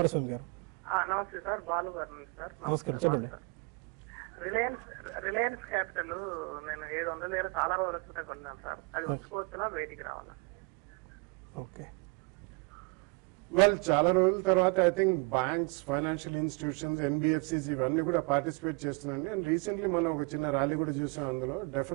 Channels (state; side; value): quieter; left; 31.3 dB